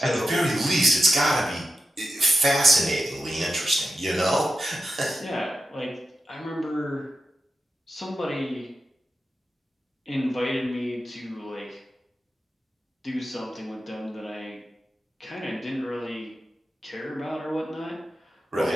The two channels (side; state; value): both; normal; correlation 0.90